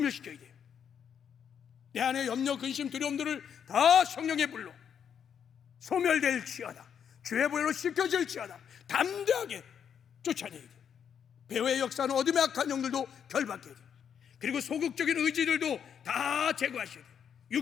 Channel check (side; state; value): right; quieter; 8.0 dB